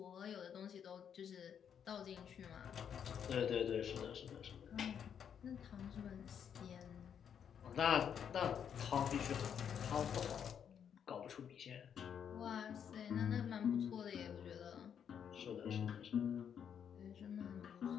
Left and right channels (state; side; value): quieter; right; 8.1 dB